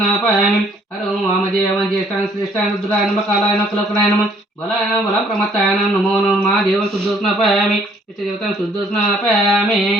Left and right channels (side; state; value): both; normal; correlation 0.62